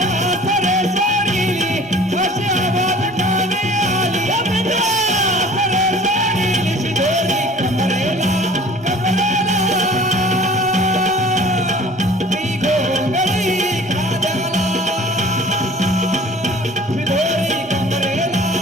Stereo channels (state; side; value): normal; both; correlation 0.47